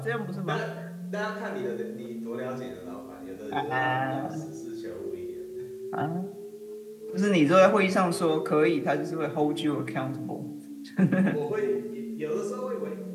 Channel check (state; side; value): identical; both; correlation 1.00